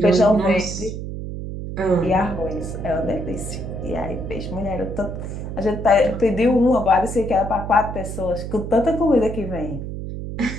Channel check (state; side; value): noise; right; hum, 7 dB below the sound